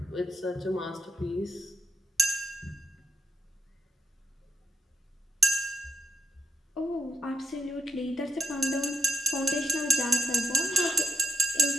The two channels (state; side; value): normal; both; correlation 0.79